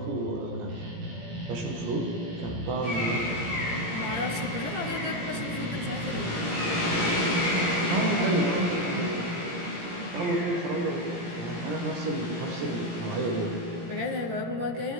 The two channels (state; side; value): late; left; 17 ms